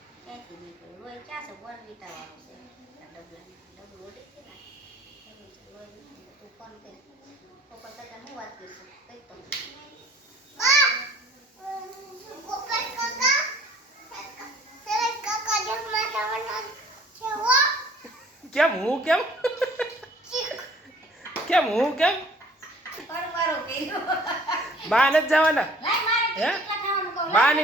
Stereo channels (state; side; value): normal; both; correlation 0.53